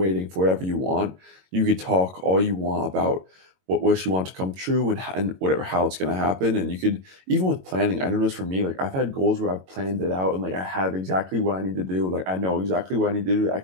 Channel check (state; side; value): late; left; 22 ms